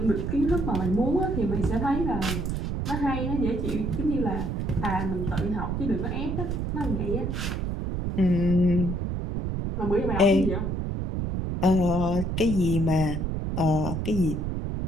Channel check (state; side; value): noise; right; rumble, 2 dB below the sound